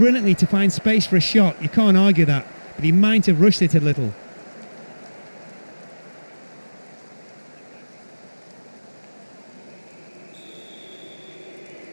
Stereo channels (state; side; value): inverted; both; correlation -1.00